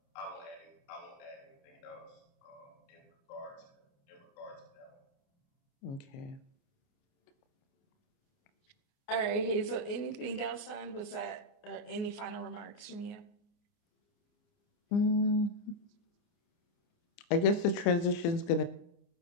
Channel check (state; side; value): late; right; 29 ms